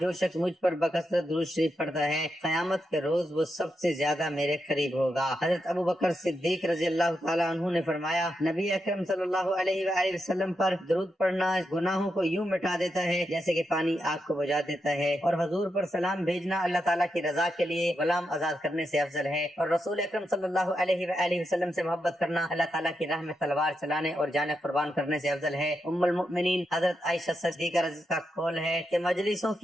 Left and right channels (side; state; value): both; normal; correlation 0.85